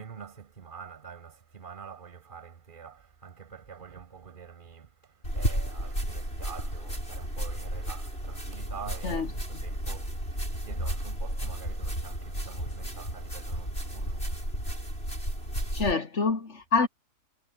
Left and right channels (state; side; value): late; right; 2.9 ms